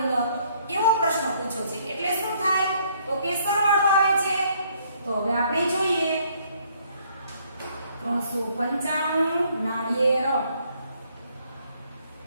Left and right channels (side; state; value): both; inverted; correlation -0.66